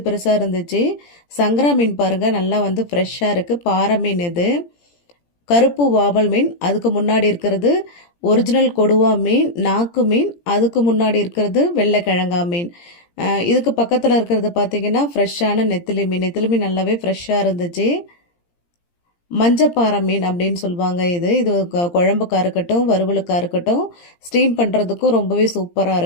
பெருசாக இருந்துச்சு. சங்கரா மீன் பாருங்கள், நல்லா ஃப்ரெஷ்ஷாக இருக்குது. பாறை மீன், இது கருப்பு வாவல் மீன். அதுக்கு முன்னாடி இருக்கிறது ஒரிஜினல் கொடுவா மீன், நாக்கு மீன். அதுக்கு முன்னாடி இருக்கிறது வெள்ளைக்கிழங்கா மீன். இதுக்கு பக்கத்தில் இருக்கிறது பார்த்தீங்கன்னா ஃப்ரெஷ்ஷான நெத்திலி மீன். நெத்திலி மீன் நல்லாவே ஃப்ரெஷ்ஷாக இருந்துச்சு. மஞ்சப்பாறை மீன் அப்படின்னு சொல்லுவாங்க. இது குழம்புக்காக இருக்கட்டும், வறுவலுக்காக இருக்கட்டும், ஸ்டீம் பண்ணுறதுக்கும் ரொம்பவே சூப்பராக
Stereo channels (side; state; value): right; late; 17 ms